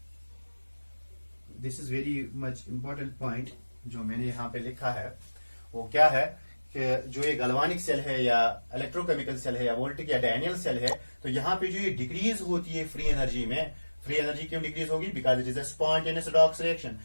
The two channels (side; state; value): both; inverted; correlation -1.00